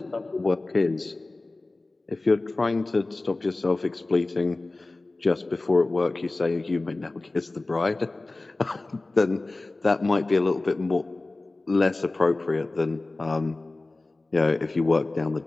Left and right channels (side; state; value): right; quieter; 3.1 dB